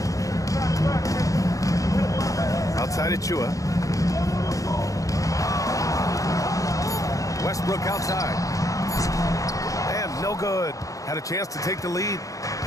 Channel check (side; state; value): right; late; 0.16 ms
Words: Outside Achua. Westbrook outside. And no good. Had a chance to take the lead.